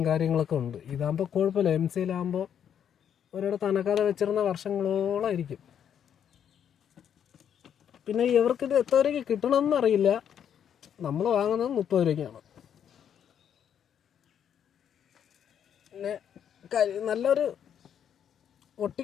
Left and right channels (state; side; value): quieter; right; 8.8 dB